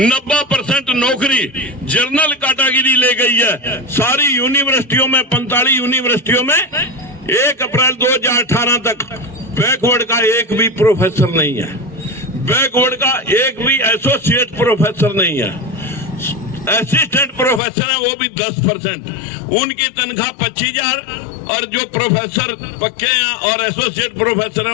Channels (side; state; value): right; drops out; at 17.6 s